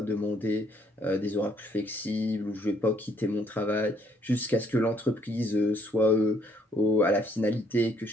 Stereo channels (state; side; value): normal; both; correlation 0.67